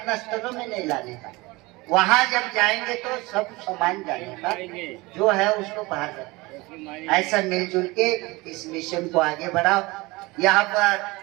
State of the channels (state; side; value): quieter; left; 22.8 dB